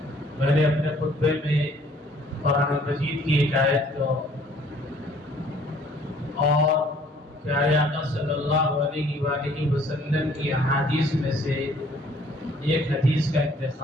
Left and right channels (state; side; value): normal; both; correlation 0.58